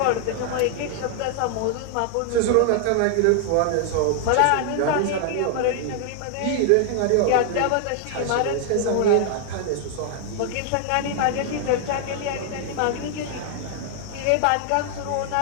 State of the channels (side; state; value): both; different; correlation 0.00